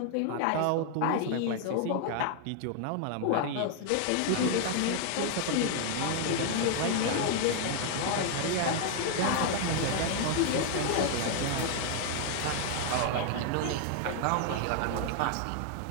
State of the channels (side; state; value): both; different; correlation 0.00